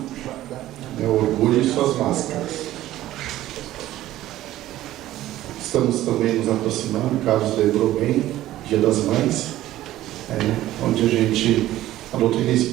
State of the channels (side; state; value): left; quieter; 14.6 dB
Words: o orgulho e suas máscaras. Estamos também nos aproximando, o Carlos lembrou bem, Dia das Mães, onde a doutrina